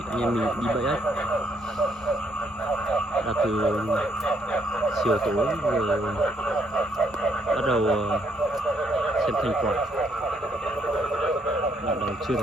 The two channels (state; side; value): normal; both; correlation 0.72